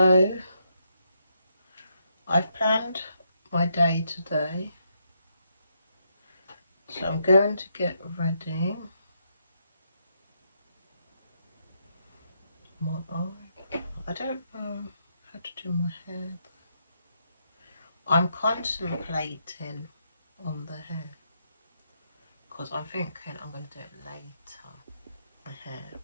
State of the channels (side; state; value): both; inverted; correlation -0.78